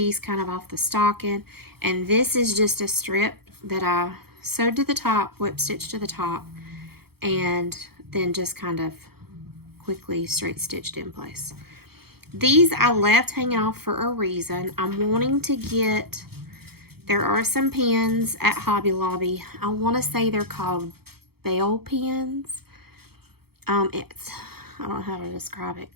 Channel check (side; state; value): left; late; 0.96 ms